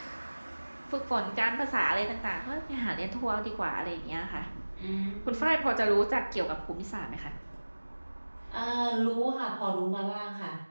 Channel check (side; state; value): both; inverted; correlation -1.00